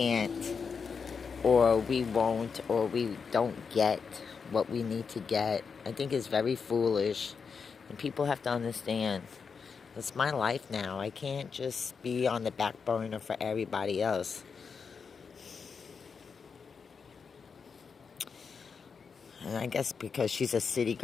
or we won't, or we don't get what we need to get. I think it's very foolish. And people have to understand, it's my life now. I can't just be on the back burner for everybody else. And I guess because she's a city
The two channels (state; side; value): quieter; right; 5.7 dB